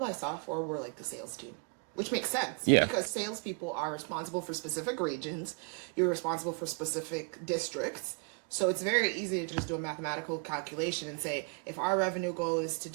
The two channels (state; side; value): quieter; left; 36.4 dB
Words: I saw for were like the sales team, which makes sense Yeah. because salespeople are responsible for specific regions. You're responsible for specific districts. So it's very easy to just do a mathematical calculation and say, if our revenue goal is to